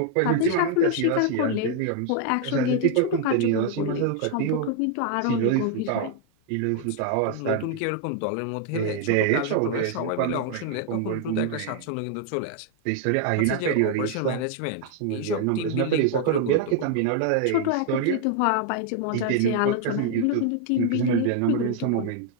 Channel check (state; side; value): different; both; correlation 0.00